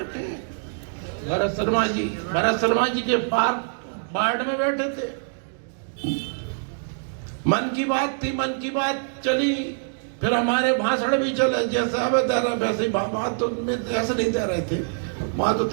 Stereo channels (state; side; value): silent; left; digital silence